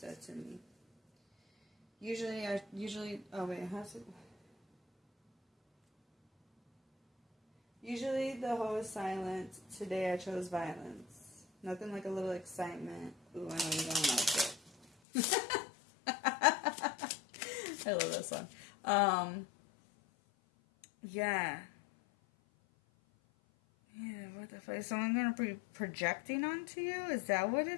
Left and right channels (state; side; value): drops out; right; at 14.9 s